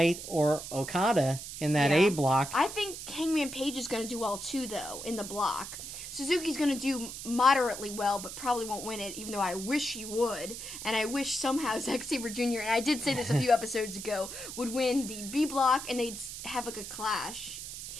or Okada in that A block. I think Hangman Page is going to do well too, though, in the block. Suzuki's going to do moderately well, but probably won't win it, even though I wish he would. And I wish somehow Zack Sabre Jr., and I did say this a few episodes ago, would win the B block, and they'd have like a clash.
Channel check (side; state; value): right; noise; hiss, 9 dB below the sound